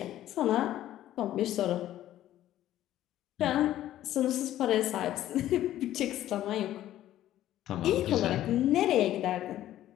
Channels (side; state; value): right; quieter; 13.1 dB